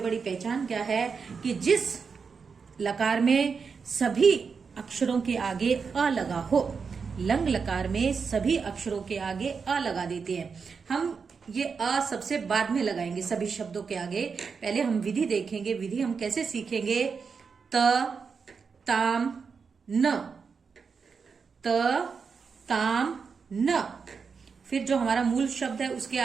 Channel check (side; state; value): left; quieter; 5.5 dB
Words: पहचान क्या है कि जिस लकार में सभी अक्षरों के आगे अ लगा हो, लंग लकार में सभी अक्षरों के आगे अ लगा देते हैं। हम ये अ सबसे बाद में लगाएंगे सभी शब्दों के आगे। पहले हम विधि देखेंगे। विधि हम कैसे सीखेंगे? त ताम न, त ताम न। फिर जो हमारा मूल शब्द है उसके